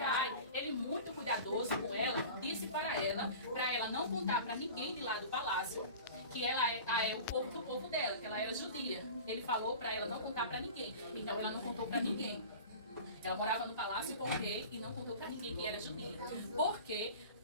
ele muito cuidadoso com ela, disse para ela não contar para ninguém de lá do palácio que ela é o povo do povo dela, que ela era judia. Ele falou para ela não contar para ninguém. Então ela não contou para ninguém. Ela morava no palácio com o rei e não contou para ninguém que era judia. Porque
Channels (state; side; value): inverted; both; correlation -0.37